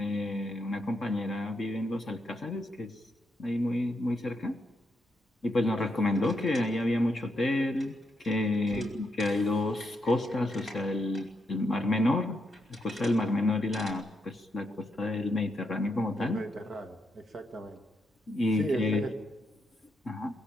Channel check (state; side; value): normal; both; correlation 0.81